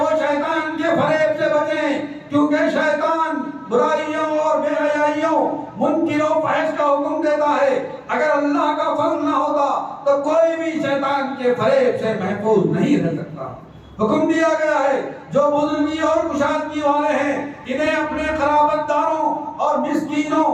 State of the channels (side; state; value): both; identical; correlation 1.00